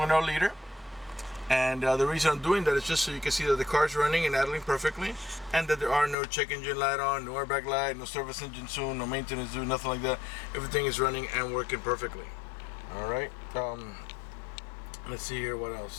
liter. And the reason I'm doing that is just so you can see that the car is running and idling perfectly, and that there are no check engine light on, no airbag light, no service engine soon, no maintenance due, nothing like that. Everything is running and working perfectly. All right. Let's see here. What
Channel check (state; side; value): drops out; right; at 6.2 s